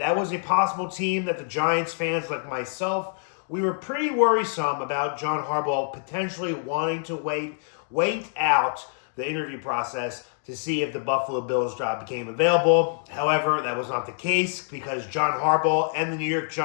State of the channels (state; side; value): silent; right; digital silence